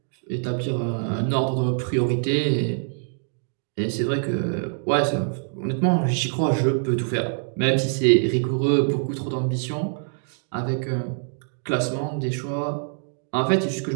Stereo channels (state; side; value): silent; left; digital silence